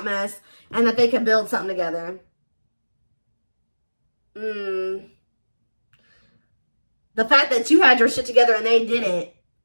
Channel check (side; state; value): both; inverted; correlation -1.00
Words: mess. And that they could build something together. The fact that you had your shit together and they didn't